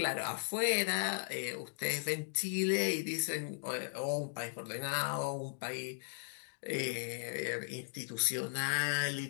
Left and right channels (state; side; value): silent; right; digital silence